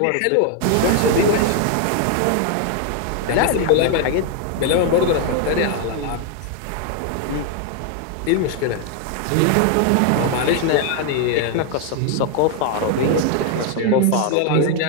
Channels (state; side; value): different; both; correlation 0.00